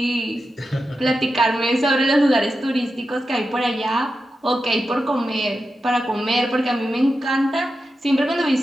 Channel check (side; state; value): both; normal; correlation 0.90